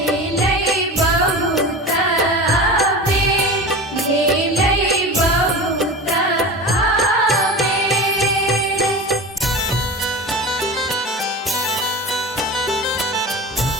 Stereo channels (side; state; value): both; normal; correlation 0.31